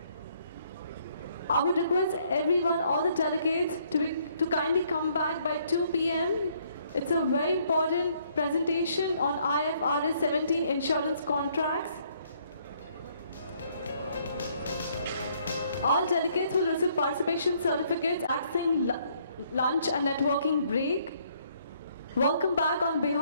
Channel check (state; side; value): inverted; both; correlation -0.67